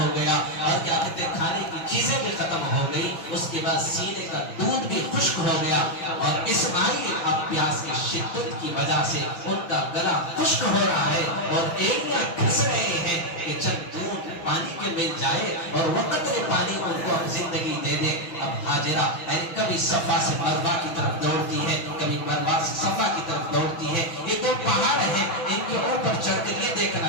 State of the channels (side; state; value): right; late; 5.8 ms